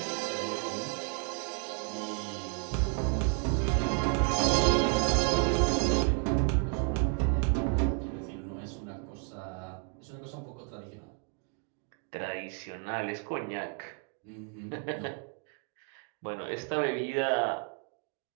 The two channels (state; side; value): quieter; left; 39.1 dB